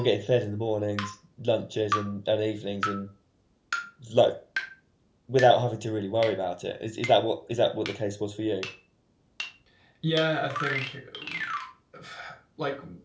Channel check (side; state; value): both; identical; correlation 1.00